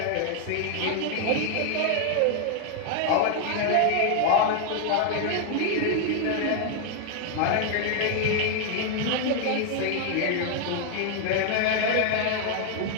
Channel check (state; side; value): different; both; correlation 0.00